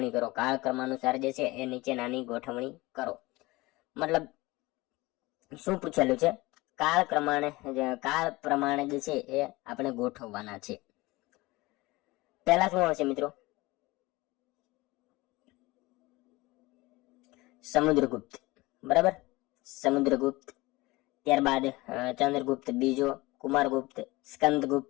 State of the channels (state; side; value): quieter; right; 21.3 dB